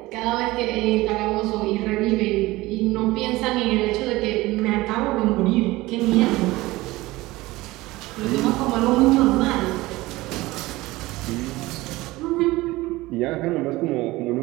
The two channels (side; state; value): left; quieter; 19.5 dB